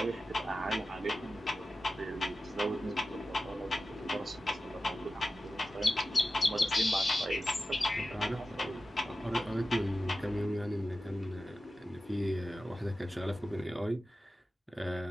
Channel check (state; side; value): normal; both; correlation 0.93